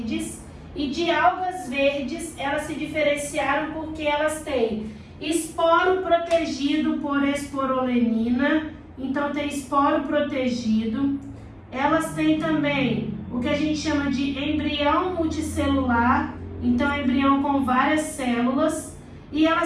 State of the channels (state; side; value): identical; both; correlation 1.00